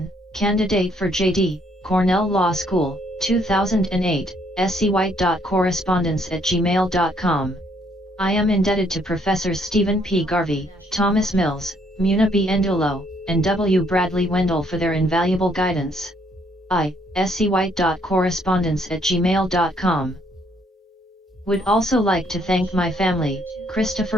candidate for J.D., Cornell Law School, 2008, scwhite.correspondence@gmail.com. I am indebted to Professors Stephen P. Garvey, Thomas Mills, Muna B. Endulo, and W. Bradley Wendell for their invaluable guidance. scwhite.correspondence@gmail.com. Would also like to thank my family,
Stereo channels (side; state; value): both; normal; correlation 0.68